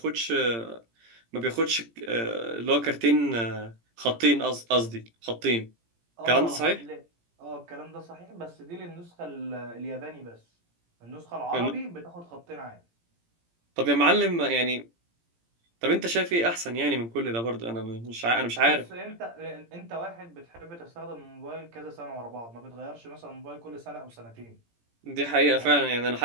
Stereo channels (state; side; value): late; left; 17 ms